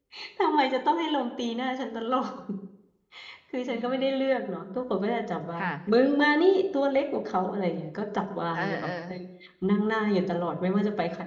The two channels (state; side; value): identical; both; correlation 1.00